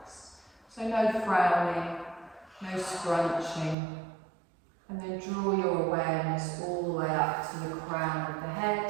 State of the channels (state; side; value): drops out; left; at 3.8 s